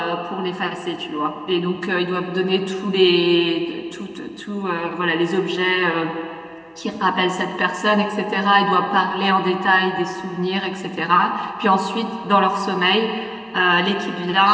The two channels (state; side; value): identical; both; correlation 1.00